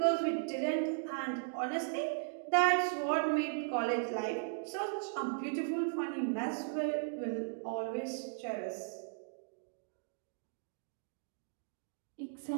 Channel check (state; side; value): silent; left; digital silence